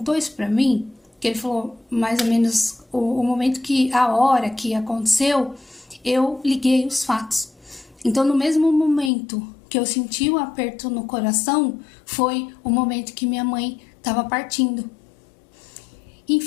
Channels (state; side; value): drops out; right; at 9.1 s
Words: isso pra mim, que ele falou mais ou menos o momento a hora que aconteceu, eu liguei os fatos. Então no mesmo momento que eu senti o aperto no coração, foi o momento que minha mãe estava partindo.